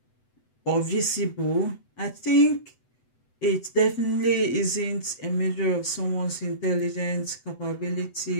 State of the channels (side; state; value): right; late; 7.9 ms